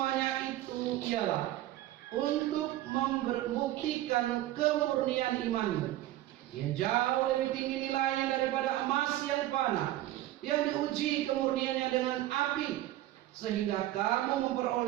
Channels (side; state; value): left; quieter; 14.9 dB